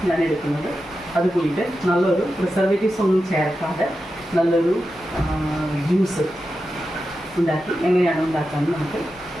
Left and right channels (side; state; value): both; normal; correlation 0.90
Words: ഞാൻ എടുക്കുന്നത്. അത് കൂടിയിട്ട് നല്ലൊരു പ്രിസർവേറ്റീവ്സ് ഒന്നും ചേർക്കാതെ നല്ലൊരു ജ്യൂസ് ഉണ്ടാക്കി എങ്ങനെയാണ് ഉണ്ടാക്കാമെന്ന് നമുക്ക്